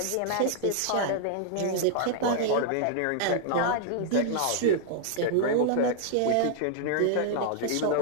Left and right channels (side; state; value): both; different; correlation -0.01